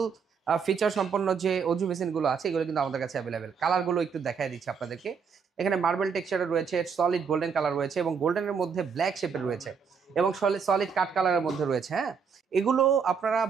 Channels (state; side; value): quieter; left; 6.1 dB